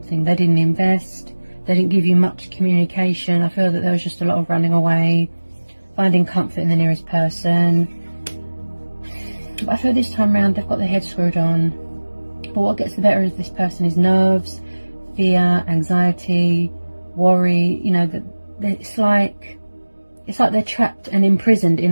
They didn't invest, they didn't give you much communication. I feel that there was just a lot of running away, finding comfort in the nearest person. But I feel this time around they've got their head screwed on. But what gets the better of this person is nerves, fear, anxiety, worry. You know, that it's like they're trapped and imprisoned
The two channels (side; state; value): both; inverted; correlation -1.00